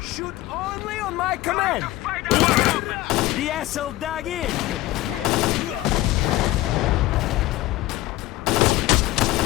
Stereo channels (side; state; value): right; quieter; 17.3 dB